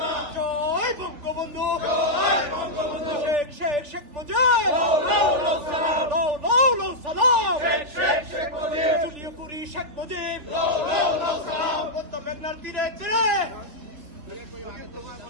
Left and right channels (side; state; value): left; late; 3.4 ms